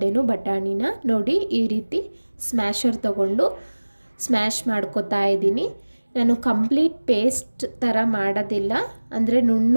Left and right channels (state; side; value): inverted; both; correlation -1.00